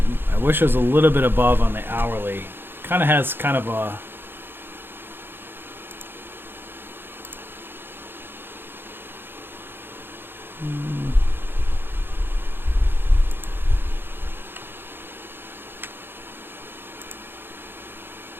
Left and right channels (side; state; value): left; late; 0.10 ms